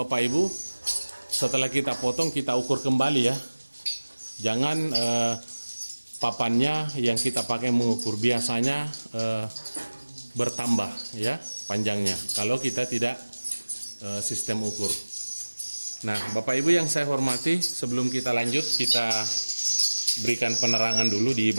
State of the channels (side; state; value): both; inverted; correlation -1.00